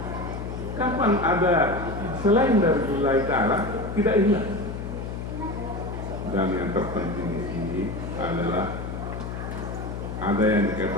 Kapan ada selain dari lillahi ta'ala tidak ikhlas? Dan yang terpenting di sini adalah ada yang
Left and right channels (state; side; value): noise; left; hum, 6 dB below the sound